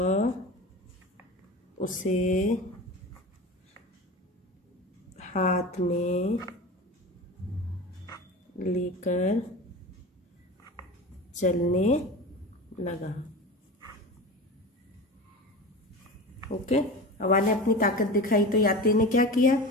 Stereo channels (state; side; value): normal; both; correlation 0.31